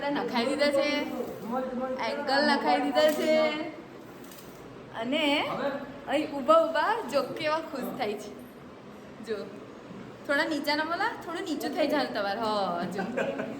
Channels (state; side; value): identical; both; correlation 1.00